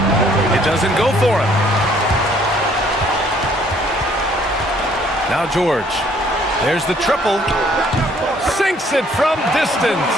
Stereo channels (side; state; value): both; normal; correlation 0.62